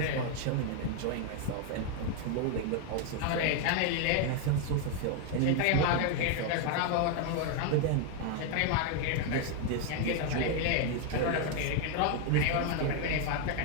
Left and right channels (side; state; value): both; different; correlation 0.01